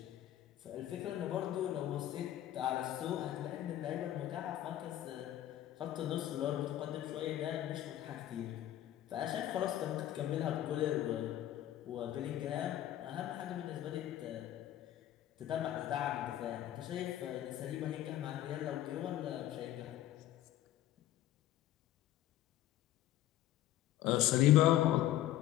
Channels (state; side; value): quieter; right; 13.1 dB